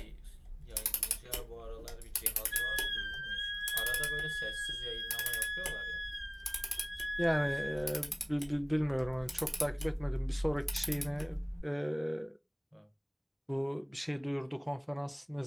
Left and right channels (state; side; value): identical; both; correlation 1.00